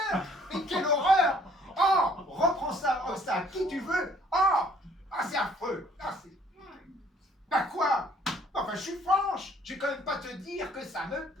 Mais quelle horreur! Oh, reprends ça, à qui tu veux! C'est affreux! Bah quoi? Enfin, je suis franche! Je vais quand même pas te dire que ça me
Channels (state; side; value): normal; both; correlation 0.60